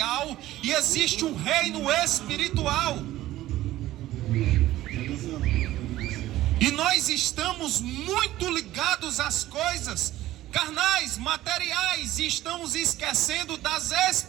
e existe um reino espiritual. E nós estamos muito ligados às coisas carnais, materiais, e estamos esquecendo das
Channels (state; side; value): quieter; left; 15.2 dB